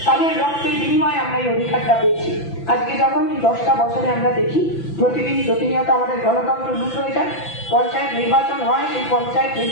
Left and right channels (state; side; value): late; right; 5.9 ms